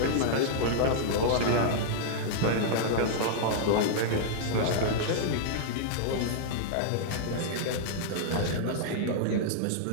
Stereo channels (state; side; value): different; both; correlation -0.02